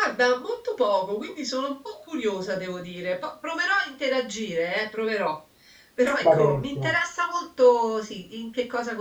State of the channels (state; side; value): identical; both; correlation 1.00